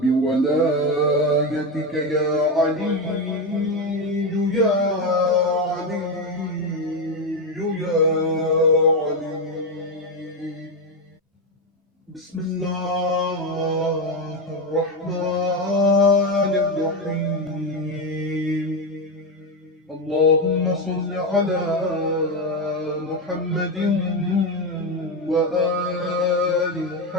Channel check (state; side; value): normal; both; correlation 0.12